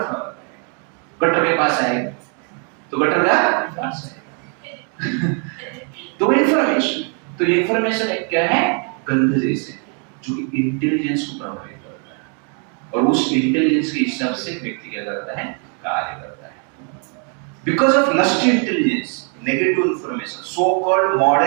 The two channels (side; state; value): left; quieter; 39.2 dB